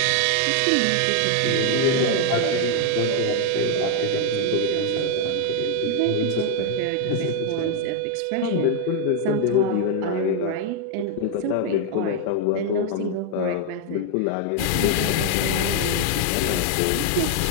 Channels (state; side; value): different; both; correlation 0.00